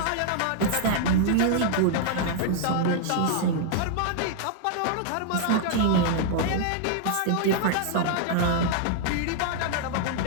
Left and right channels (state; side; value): different; both; correlation -0.01